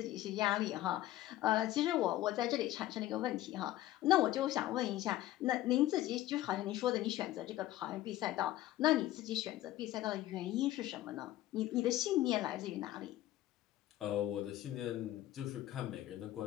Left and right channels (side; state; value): right; quieter; 14.8 dB